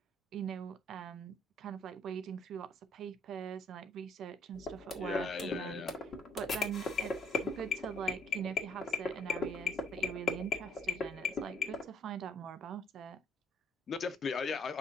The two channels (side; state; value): both; normal; correlation 0.63